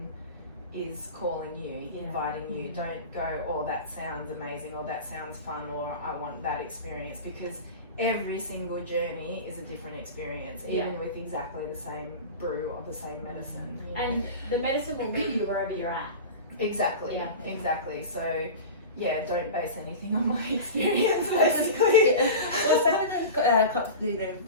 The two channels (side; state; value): both; inverted; correlation -0.30